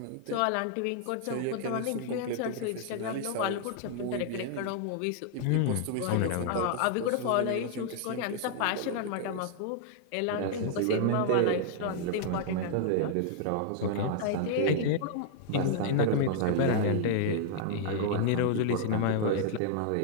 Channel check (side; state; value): both; different; correlation -0.01